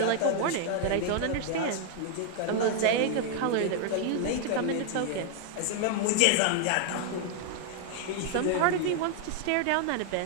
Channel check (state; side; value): different; both; correlation 0.00